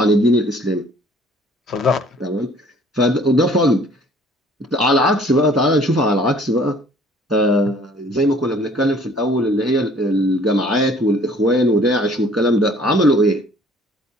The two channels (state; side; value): normal; both; correlation 0.55